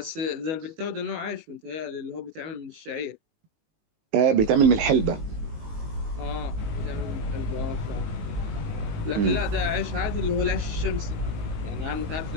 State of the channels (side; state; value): left; late; 19 ms